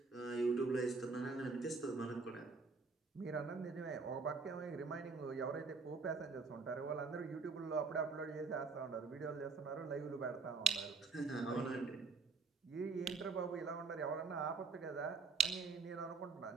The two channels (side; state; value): left; quieter; 4.7 dB